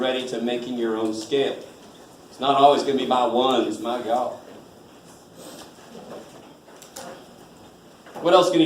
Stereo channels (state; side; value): identical; both; correlation 1.00